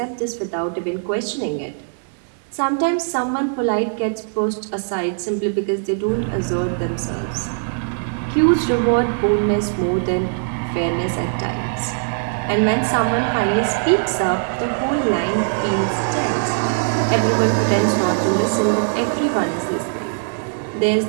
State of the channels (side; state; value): left; silent; digital silence